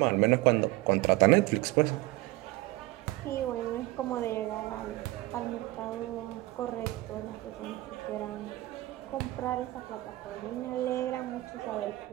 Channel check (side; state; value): left; quieter; 18.8 dB